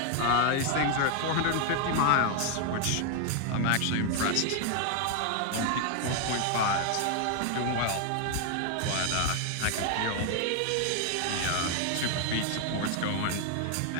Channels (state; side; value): different; both; correlation 0.00